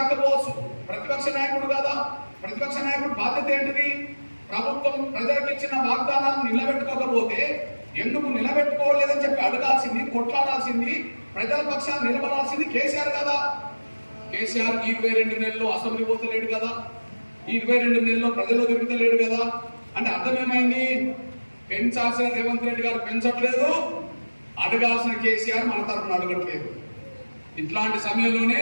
ప్రతిపక్ష నాయకుడు కదా. ప్రతిపక్ష నాయకుడు బాధ్యత ఏంటిది? ప్రభుత్వం ప్రజలకు ఇచ్చిన వాగ్దానాలను నిలబెట్టుకోకపోతే ఎందుకు నిలబెట్టుకోలేదని చెప్పి అడగాల్సింది, కొట్లాడాల్సింది, ప్రజల పక్షాన్ని నిలబడాల్సింది కేసీఆర్ కదా. కేసీఆర్ 22 నెలల్లో అసెంబ్లీ పోతలేడు కదా, 22 నెలల్లో ప్రజల్లో తిరుగుతలేడు కదా. అంటే అర్థం ఏమైంది? పెంచాల్సిన రేవంత్ రెడ్డి గారు పెంచట్లేదు, అడగాల్సిన కేసీఆర్ మన తరఫున అడగట్లేదు. ఇట్లాంటి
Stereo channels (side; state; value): both; inverted; correlation -1.00